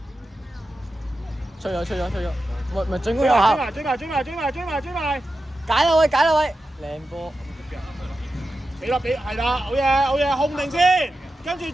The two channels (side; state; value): both; normal; correlation 0.91